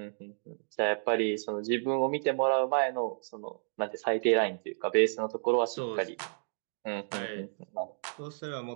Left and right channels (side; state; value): left; silent; digital silence